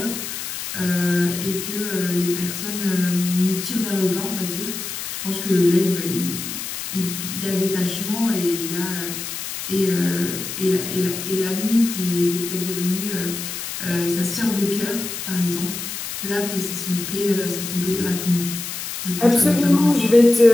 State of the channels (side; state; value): left; noise; hiss, 6 dB below the sound